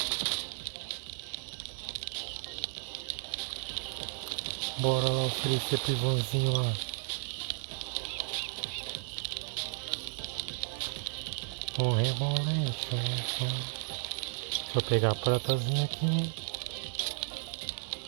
Bora lá oferecer pro Ivanzinho lá. O rebolete. Deixa eu pegar a pratazinha aqui.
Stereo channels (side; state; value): left; silent; 55 dB below the other